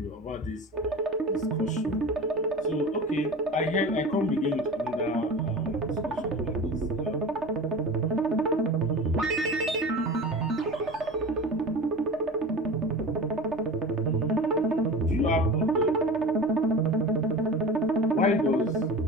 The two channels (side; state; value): both; normal; correlation 0.32